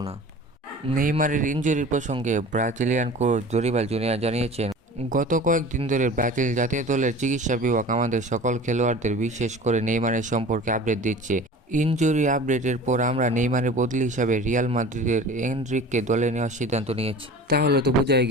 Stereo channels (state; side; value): normal; both; correlation 0.40